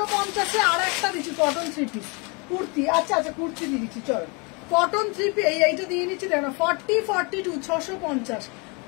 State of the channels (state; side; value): quieter; right; 31.1 dB